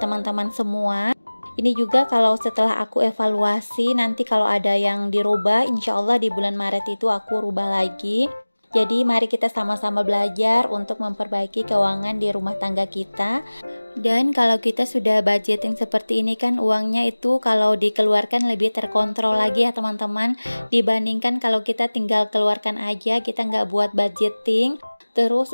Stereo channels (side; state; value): both; inverted; correlation -1.00